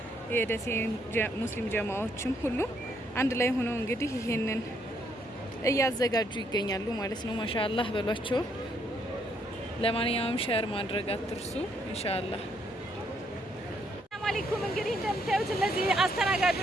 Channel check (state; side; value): normal; both; correlation 0.72